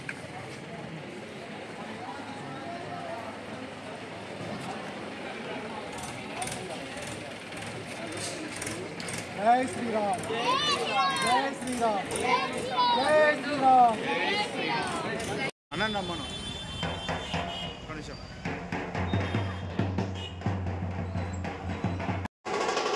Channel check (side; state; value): both; identical; correlation 1.00